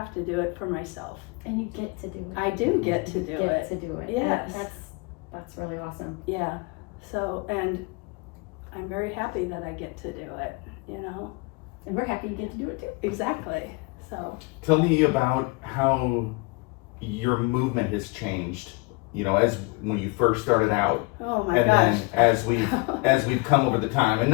to do it for myself. And you get to do it. I do get to do You it. get to do it. Yes. And that's really awesome. Yeah. So, and I'm very happy that I get to do it, And we're happy you get to do it too. Exactly. So, Tell me about how your movement has changed, as when you first started out. oh my And gosh. then as we've come over the time, and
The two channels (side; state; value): right; quieter; 27.4 dB